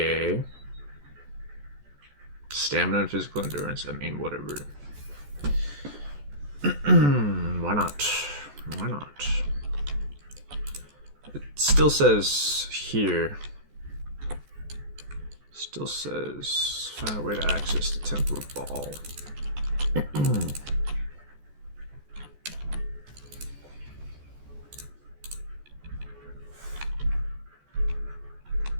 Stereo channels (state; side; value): late; left; 14 ms